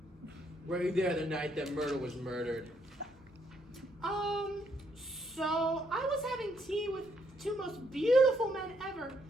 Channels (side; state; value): both; normal; correlation 0.73